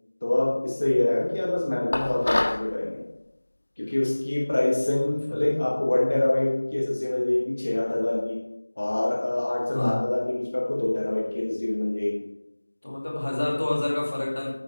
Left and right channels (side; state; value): both; inverted; correlation -1.00